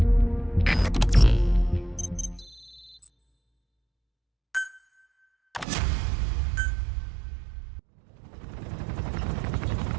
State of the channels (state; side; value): drops out; left; at 5.7 s